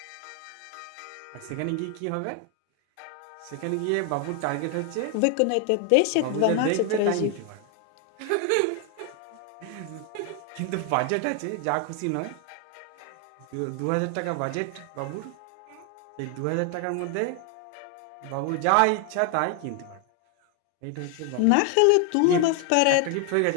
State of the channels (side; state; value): both; different; correlation 0.01